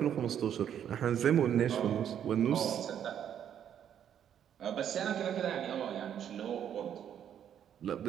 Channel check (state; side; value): quieter; left; 9.4 dB